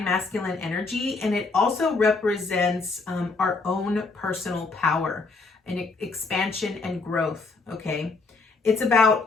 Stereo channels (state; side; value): quieter; right; 3.9 dB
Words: masculine energy, and it also represents our own personal power and expansion and growth, okay? It's